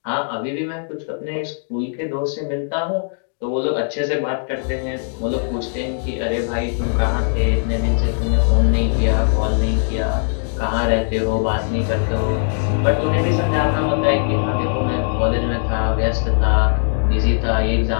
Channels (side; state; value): right; silent; digital silence